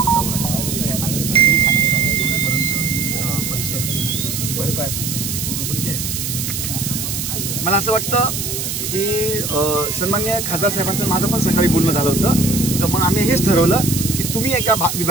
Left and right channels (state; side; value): noise; right; hiss, 3 dB below the sound